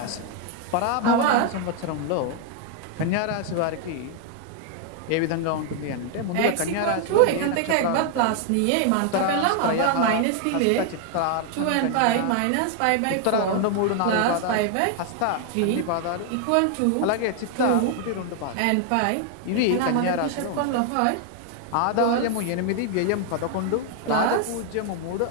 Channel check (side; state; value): both; different; correlation 0.00